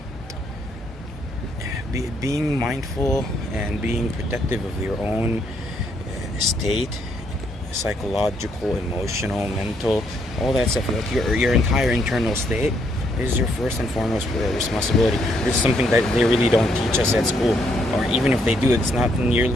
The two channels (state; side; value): normal; both; correlation 0.72